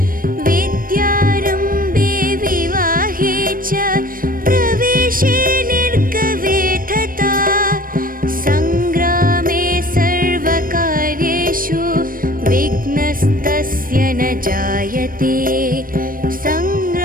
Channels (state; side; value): late; left; 0.41 ms